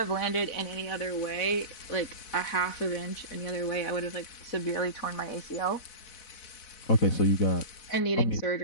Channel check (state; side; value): late; right; 4.1 ms